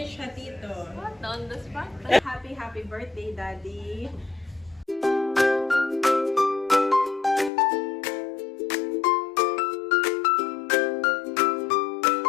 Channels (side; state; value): right; drops out; at 7.5 s